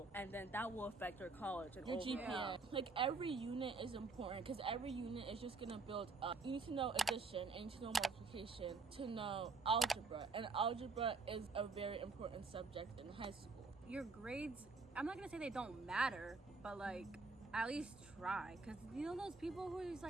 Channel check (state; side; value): quieter; left; 4.0 dB